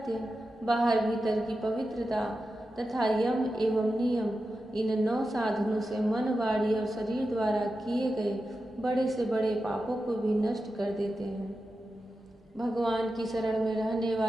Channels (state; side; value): normal; both; correlation 0.91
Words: बाहर भीतर की पवित्रता तथा यम एवं नियम, इन 9 साधनों से मन, वाणी और शरीर द्वारा किए गए बड़े से बड़े पापों को भी नष्ट कर देते हैं। भगवान की शरण में रहने